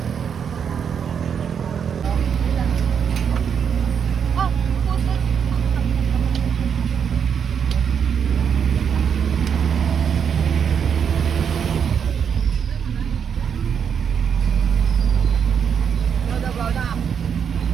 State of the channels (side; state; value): left; quieter; 7.4 dB